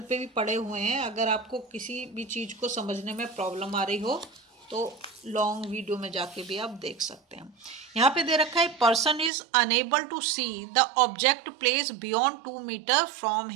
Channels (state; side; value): drops out; left; at 9.3 s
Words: पे भी पड़े हुए हैं, अगर आपको किसी भी चीज़ को समझने में प्रॉब्लम आ रही हो तो लॉन्ग वीडियो में जाके भी आप देख सकते हैं। यहाँ पे दे रखा है person is unable to see the object place beyond 2 metre from